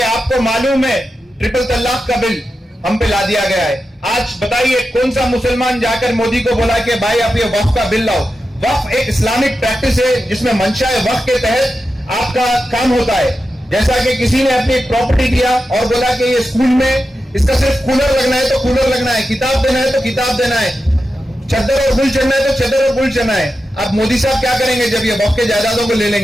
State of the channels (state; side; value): normal; both; correlation 0.90